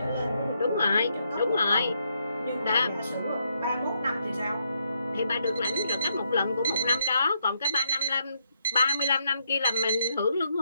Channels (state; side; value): inverted; both; correlation -0.76